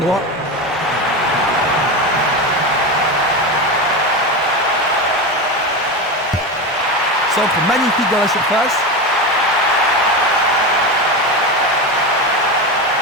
Centre magnifique dans la surface.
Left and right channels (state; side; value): normal; both; correlation 0.19